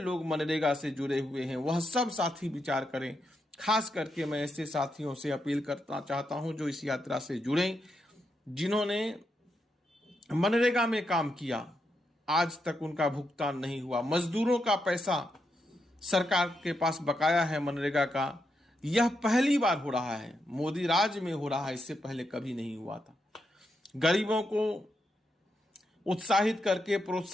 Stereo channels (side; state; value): both; normal; correlation 0.83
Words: मनरेगा से जुड़े हुए हैं वह सब साथी विचार करें। खास करके मैं ऐसे साथियों से अपील करना चाहता हूं जो इस यात्रा से जुड़े, जिन्होंने मनरेगा में काम किया, आज तक उनका भुगतान नहीं हुआ। मजदूरों का पैसा सरकार के पास बकाया है मनरेगा का। यह पहली बार हो रहा है, मोदी राज में हो रहा है, इससे पहले कभी नहीं हुआ था। गरीबों को उत्साहित करके,